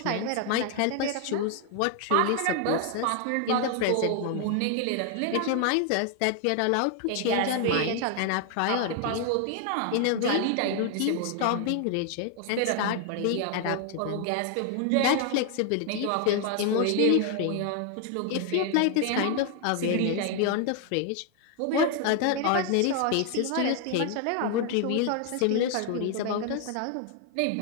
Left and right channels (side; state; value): both; different; correlation 0.00